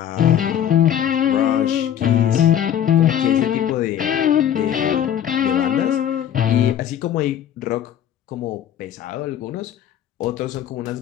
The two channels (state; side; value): quieter; right; 10.1 dB